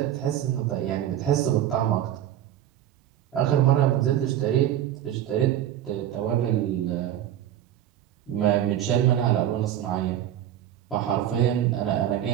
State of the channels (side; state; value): left; quieter; 11.5 dB